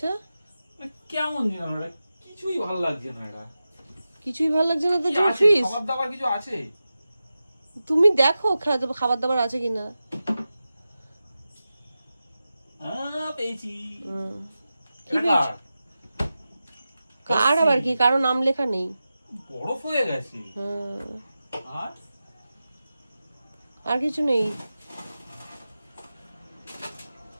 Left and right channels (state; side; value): inverted; both; correlation -0.93